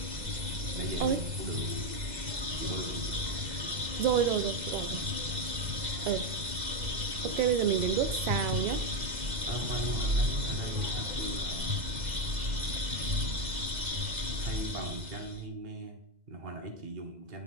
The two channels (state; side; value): late; left; 2.0 ms